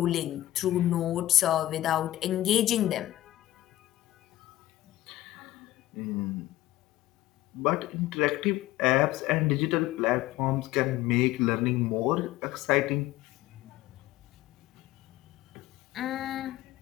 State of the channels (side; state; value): right; quieter; 15.3 dB